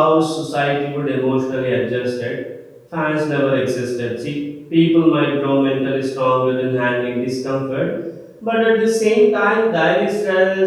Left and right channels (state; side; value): identical; both; correlation 1.00